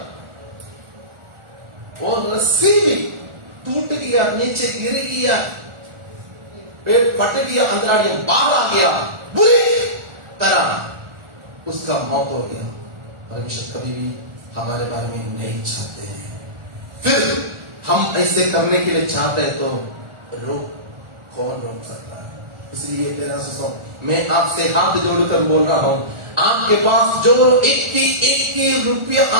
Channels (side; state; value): left; late; 1.4 ms